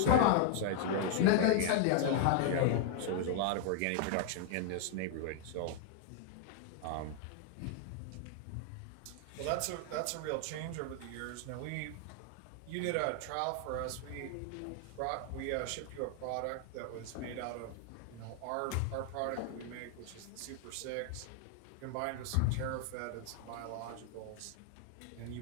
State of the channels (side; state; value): both; different; correlation 0.00